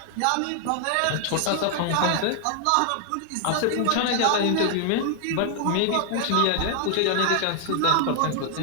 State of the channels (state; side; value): different; both; correlation 0.00